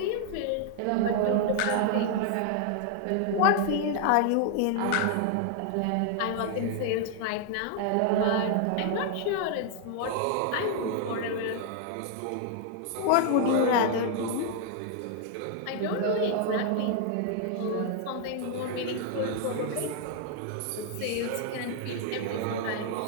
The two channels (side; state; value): both; different; correlation 0.00